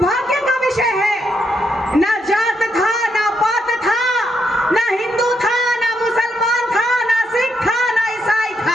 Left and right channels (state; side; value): normal; both; correlation 0.79